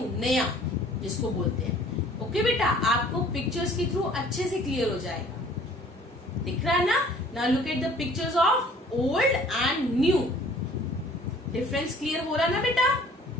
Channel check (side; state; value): both; normal; correlation 0.53